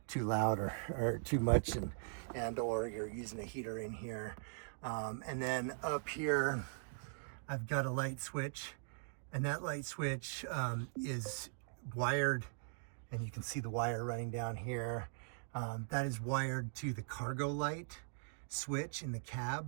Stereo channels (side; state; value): left; silent; digital silence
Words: too loud or too much, and or you're using a heater in here. And then up here I've got a light switch, and that light switch is wired, and you can see the wire running down here. That is wired to the cargo light switch in the